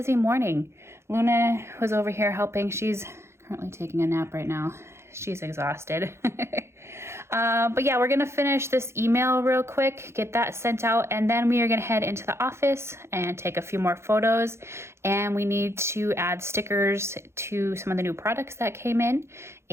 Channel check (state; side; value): late; left; 0.13 ms